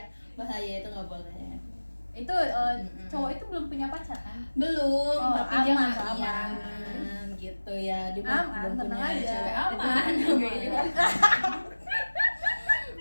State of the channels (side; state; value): both; inverted; correlation -1.00